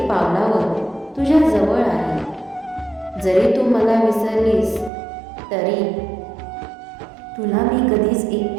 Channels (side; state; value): left; drops out; at 4.9 s